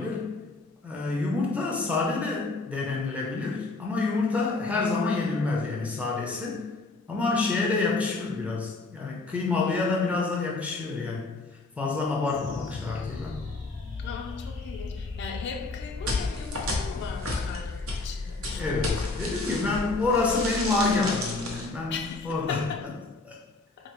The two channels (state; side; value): quieter; right; 3.3 dB